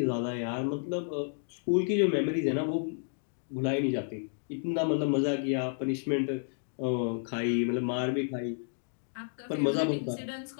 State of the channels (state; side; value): silent; right; digital silence